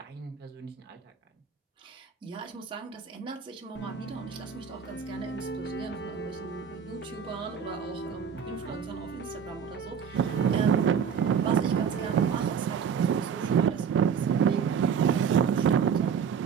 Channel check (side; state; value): left; quieter; 7.1 dB